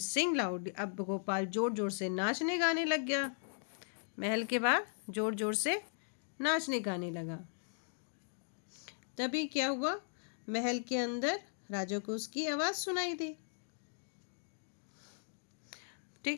loud. अब गोपाल जोर जोर से नाचने गाने लग गया, महल के बाहर जोर जोर से नाचने गाने लगा। तभी क्या हुआ, महल के अंदर राजा को उसकी आवाज़ सुनाई दी,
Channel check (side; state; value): right; silent; digital silence